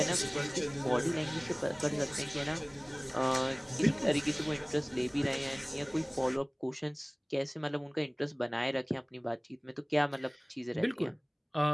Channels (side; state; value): both; identical; correlation 1.00